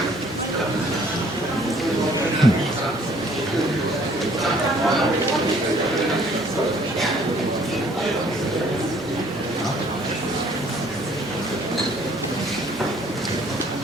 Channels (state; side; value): normal; both; correlation 0.59